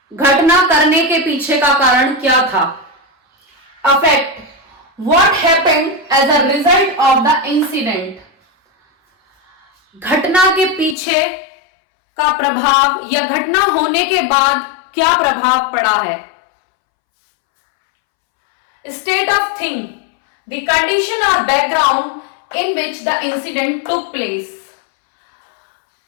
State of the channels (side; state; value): right; drops out; at 11.0 s